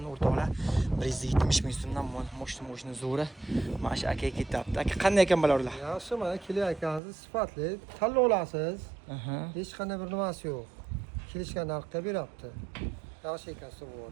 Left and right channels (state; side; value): drops out; left; at 7.0 s